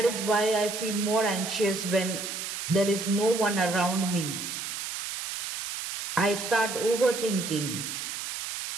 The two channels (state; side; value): noise; right; hiss, 6 dB below the sound